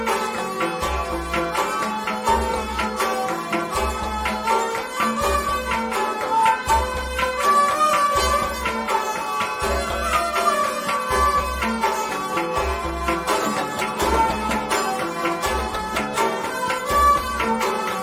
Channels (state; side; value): identical; both; correlation 1.00